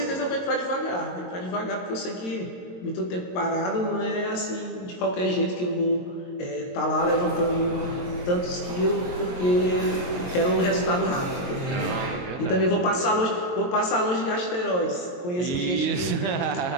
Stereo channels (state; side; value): late; right; 22 ms